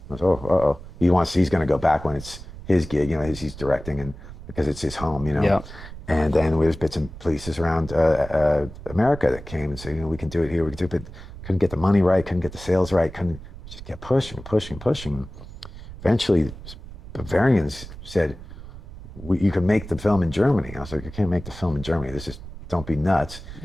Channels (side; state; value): right; noise; rumble, 14 dB below the sound